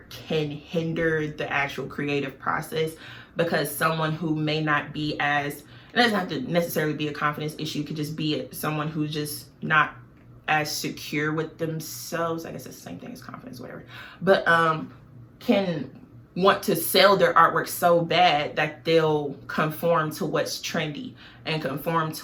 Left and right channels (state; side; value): identical; both; correlation 1.00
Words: can hinder the actual creative process, because someone who may not be as, it doesn't have to necessarily be a confidence issue, it could just be someone who's just not as secure with themselves. I guess it's the same thing as confidence, whatever, but can want to sell their artwork so bad that they'll conform to what's trendy and conform